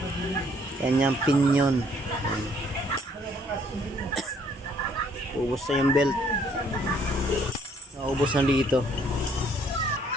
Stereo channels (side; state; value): both; normal; correlation 0.64